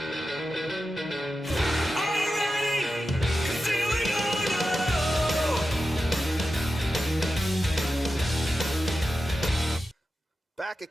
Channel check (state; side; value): normal; both; correlation 0.91